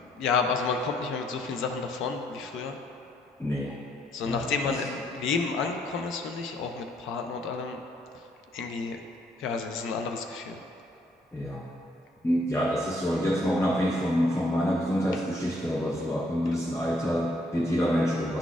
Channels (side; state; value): both; normal; correlation 0.69